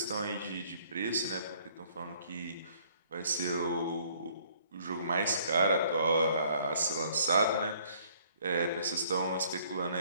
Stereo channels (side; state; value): both; inverted; correlation -0.61